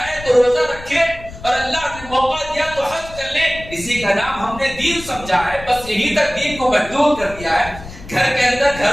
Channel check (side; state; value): left; noise; rumble, 15 dB below the sound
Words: تو روزہ رکھے، اور اللہ نے موقع دیا تو حج کر لے۔ اسی کا نام ہم نے دین سمجھا ہے، بس یہی تک دین کو محدود کر دیا ہے۔ گھر کے اندر،